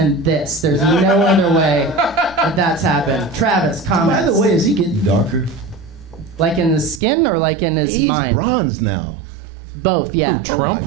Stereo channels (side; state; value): left; drops out; at 7.0 s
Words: this. There's no other way that that's happened. Travis, comments. By the way, is he getting darker? Like in his skin or like in his He's mind? bronze now. Both, yeah. Who, Trump?